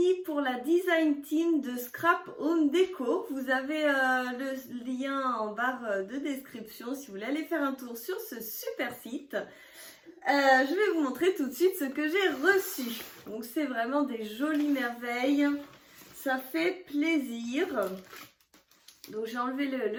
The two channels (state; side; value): identical; both; correlation 1.00